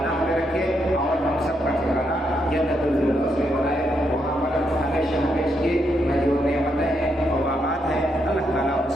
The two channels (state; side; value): normal; both; correlation 0.79